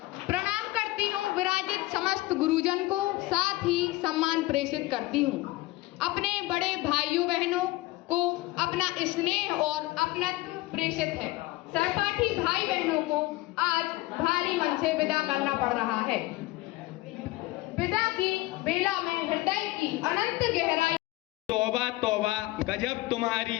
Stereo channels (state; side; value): quieter; right; 19.5 dB